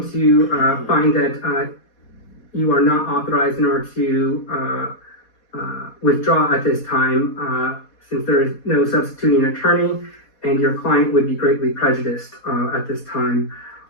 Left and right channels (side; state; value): right; late; 4.2 ms